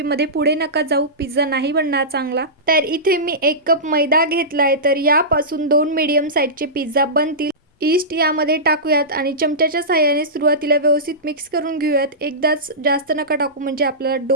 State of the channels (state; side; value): normal; both; correlation -0.18